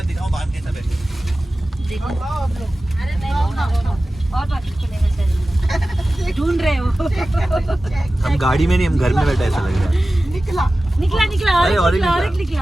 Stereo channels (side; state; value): both; normal; correlation 0.95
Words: दिखाऊं बांध कैसा बैठे। ढूंढ रहे हो? हम गाड़ी में नहीं, हम घर में बैठे ऐसा लग रहा है। निकला। निकला निकला, और अरे, एक और एक